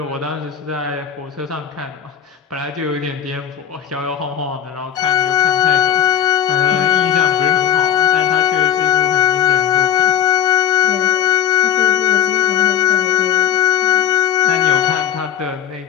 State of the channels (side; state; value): right; quieter; 9.6 dB